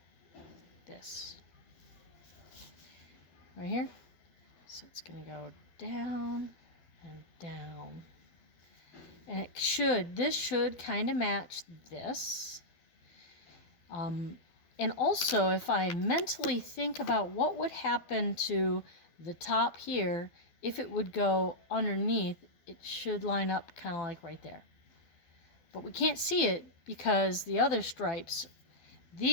this. Right here. So it's going to go down and down. And this should kind of match this. And also, if I mentally think about what would happen to the top here, if it would go underneath, it should line up kind of like right there. But we can't see it because the other stripes,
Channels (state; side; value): late; right; 12 ms